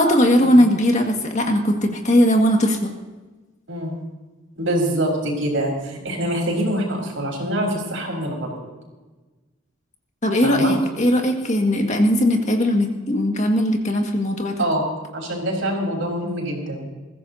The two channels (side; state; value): both; normal; correlation 0.61